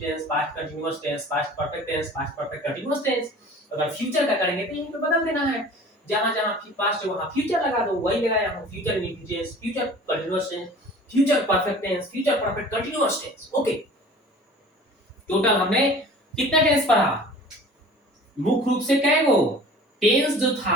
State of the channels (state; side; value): normal; both; correlation 0.44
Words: tense, past continuous tense, past perfect tense, past perfect continuous tense. अगर फ्यूचर का करेंगे तो यहीं पे बदल देना है, जहां जहां पास्ट है वहां फ्यूचर लगा दो, वही लगाया हूं, future indefinite tense, future continuous tense, future perfect tense, future perfect continuous tense. Okay, total हमने कितना टेंस पढ़ा, मुख्य रूप से कै गो टेंस जो